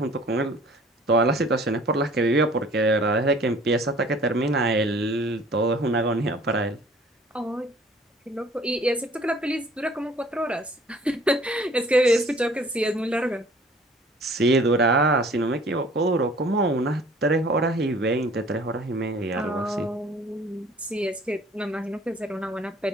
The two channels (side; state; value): both; normal; correlation 0.52